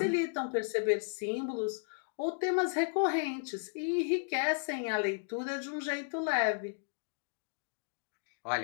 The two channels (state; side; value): silent; right; digital silence